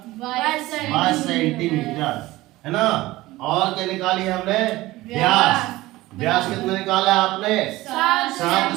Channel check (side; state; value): left; quieter; 18.3 dB